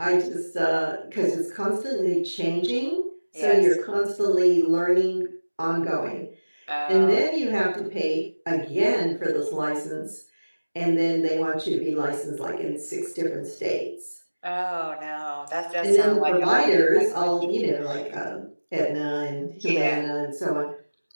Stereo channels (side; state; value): both; inverted; correlation -1.00